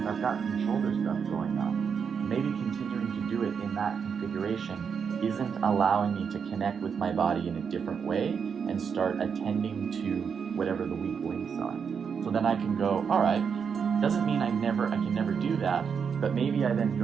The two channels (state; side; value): quieter; left; 6.6 dB